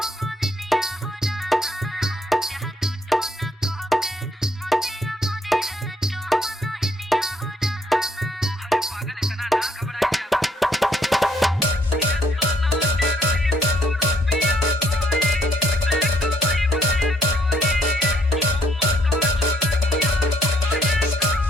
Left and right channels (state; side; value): normal; both; correlation 0.68